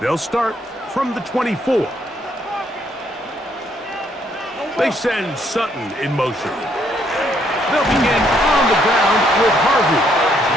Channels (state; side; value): normal; both; correlation 0.70